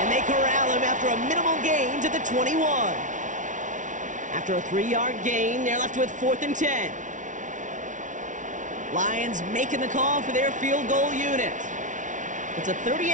they corral him after a minimal gain to the 21. After a 3-yard gain, they're left with 4th and 10. Lions making the call for their field goal unit. It's a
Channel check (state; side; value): late; left; 0.37 ms